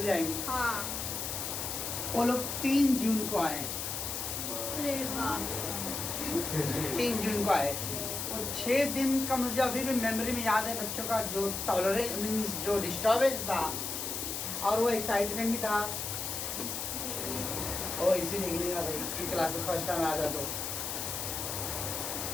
जाएंगे। हाँ। वो लोग 3 जून को आए, 3 जून को आए और 6 दिन का मुझे अभी भी मेमोरी में याद है, बच्चों का जो टॉलरेंस मीन्स जो डिस्टर्बेंस था और वो एक्साइटमेंट भी था। ओ इसी देखने का भाई कि क्लास में फर्स्ट टाइम आया था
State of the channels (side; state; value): left; noise; hiss, 3 dB below the sound